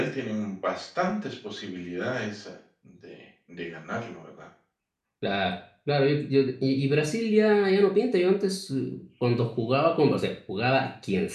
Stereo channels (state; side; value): identical; both; correlation 1.00